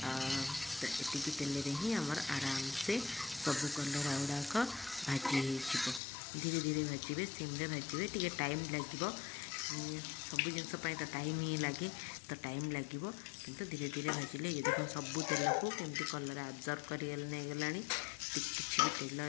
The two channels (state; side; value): drops out; right; at 6.0 s